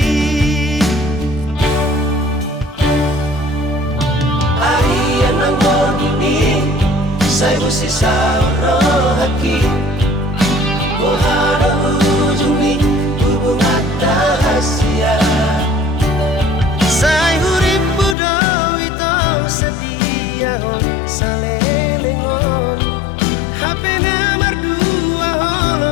arian ang ini saya mesti sauro haki Mohara ujung ni hubungan rahasia Say hurip budo ito setia hon salelengon Hape na mardua holo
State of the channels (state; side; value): drops out; right; at 18.2 s